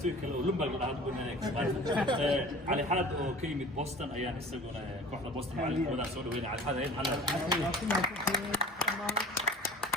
kale oo Lumberg la hadlo Ali Xalad oo ka yimid Boston ayaan isaguna kooxda Boston macallinkooda soo dhaweynay Ali Xalad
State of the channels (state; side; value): normal; both; correlation 0.43